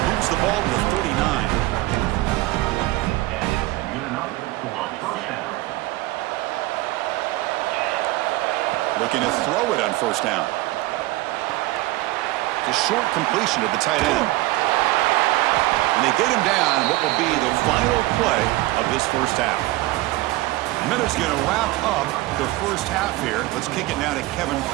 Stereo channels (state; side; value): quieter; left; 18.9 dB